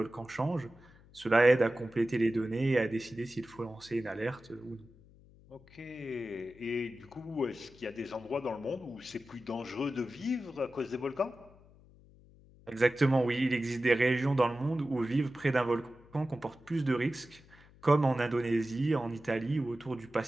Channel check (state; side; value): noise; left; hum, 25 dB below the sound